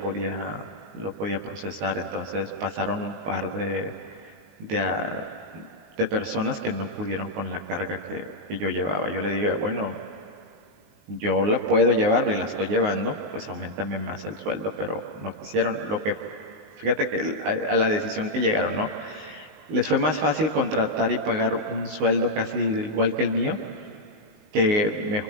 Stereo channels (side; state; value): left; late; 19 ms